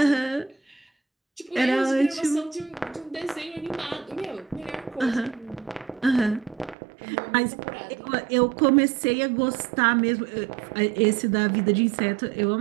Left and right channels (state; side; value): drops out; left; at 6.8 s